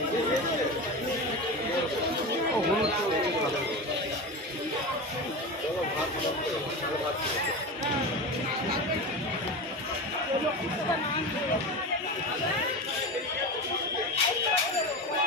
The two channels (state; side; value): normal; both; correlation 0.25